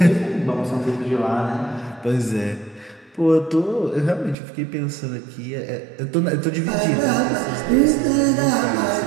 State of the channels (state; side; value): drops out; left; at 4.4 s